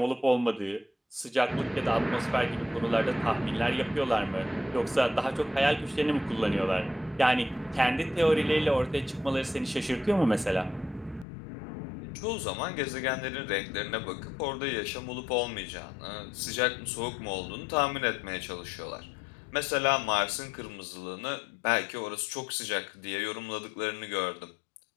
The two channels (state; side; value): drops out; right; at 11.2 s